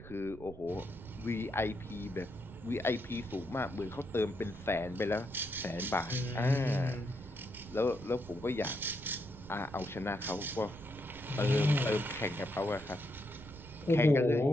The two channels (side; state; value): right; noise; rumble, 16 dB below the sound